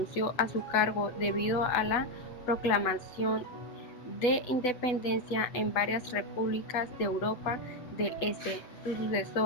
a su cargo debido a la proclamación de independencia en varias repúblicas de Europa del Este. Su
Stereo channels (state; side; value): late; right; 8.1 ms